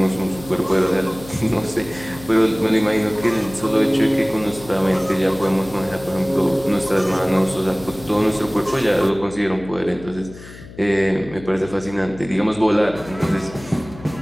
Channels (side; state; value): left; noise; hum, 17 dB below the sound